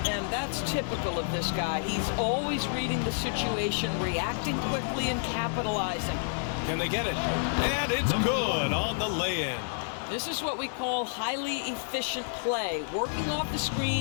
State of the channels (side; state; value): right; silent; digital silence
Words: And that's typical of this guy. He's always reading the situation, reacting quickly and capitalizing. Can they get it? And it's good on the lay-in. This is what we call highly efficient play. Working off the